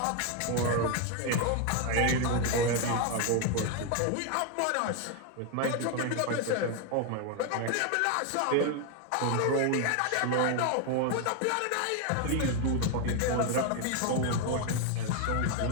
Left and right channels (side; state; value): both; different; correlation 0.01